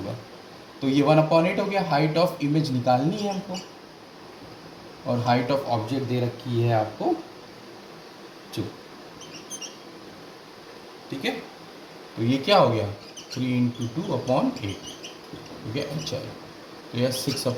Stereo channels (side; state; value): both; identical; correlation 1.00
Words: तो ये 1/8 हो गया, हाइट ऑफ इमेज निकालनी है हमको, और हाइट ऑफ ऑब्जेक्ट दे रखी है आपको 2, ठीक है। तो ये क्या हो गया 3 × 2/8 हो गया h है, तो यह